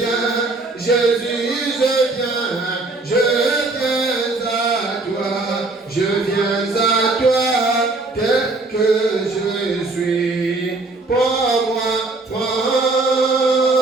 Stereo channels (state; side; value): quieter; left; 3.3 dB